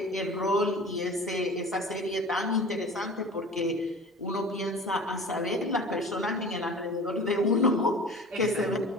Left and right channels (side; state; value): both; normal; correlation 0.39